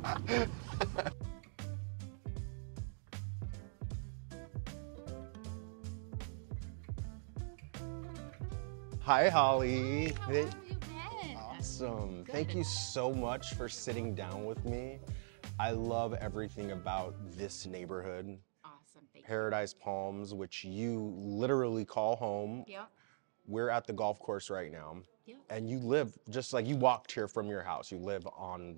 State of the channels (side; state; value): left; silent; digital silence